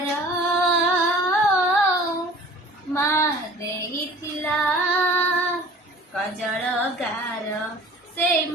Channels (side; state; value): both; normal; correlation 0.46